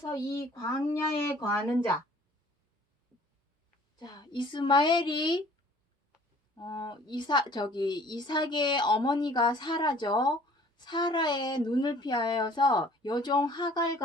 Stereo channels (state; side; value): normal; both; correlation 0.53